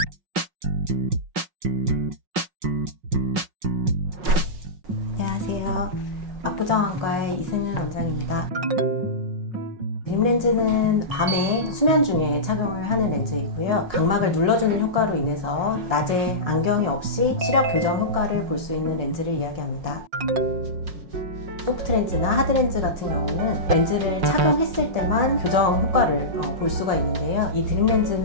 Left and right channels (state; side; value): late; left; 5.5 ms